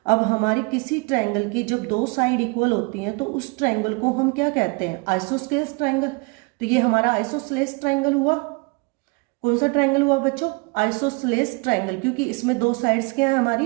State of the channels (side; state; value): left; quieter; 29.5 dB